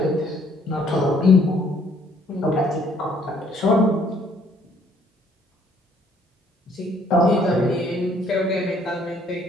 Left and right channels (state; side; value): normal; both; correlation 0.63